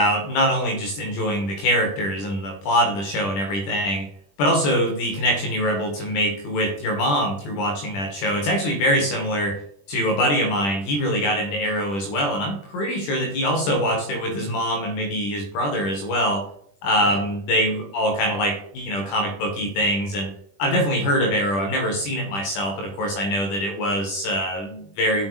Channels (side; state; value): right; late; 20 ms